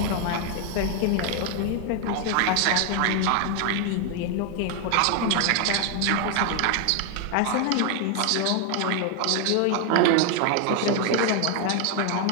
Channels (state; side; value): different; both; correlation 0.01